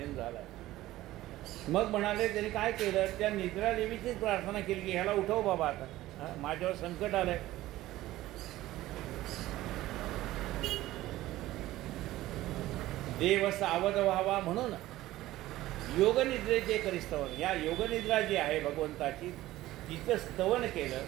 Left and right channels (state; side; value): quieter; left; 16.0 dB